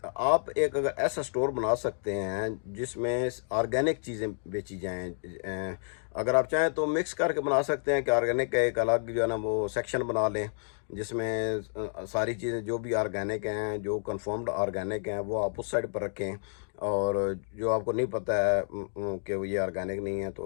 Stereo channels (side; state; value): right; silent; digital silence